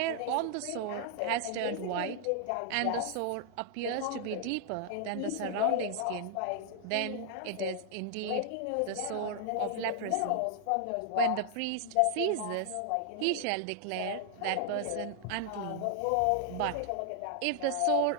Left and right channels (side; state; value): both; different; correlation 0.00